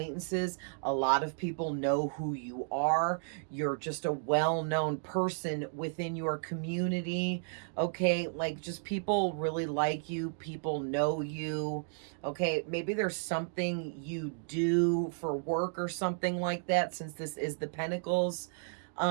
a lot of people know who you are. You're just a well-known person within your community, okay? Like, just people really like you, people know you, okay? Maybe there's something you do for work or something like that, since this is the Pentacles,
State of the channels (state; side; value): silent; left; digital silence